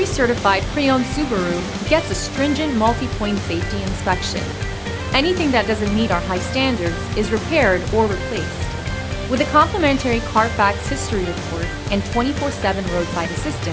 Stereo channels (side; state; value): both; identical; correlation 1.00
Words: certified pre-owned Subaru gets a stringent multi-point safety inspection. Anything that doesn't meet our high standards is repaired or replaced. With a complimentary Carfax history report and 24/7 roadside